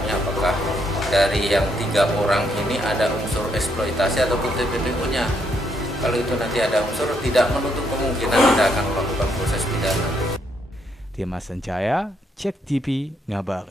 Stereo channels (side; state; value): both; normal; correlation 0.75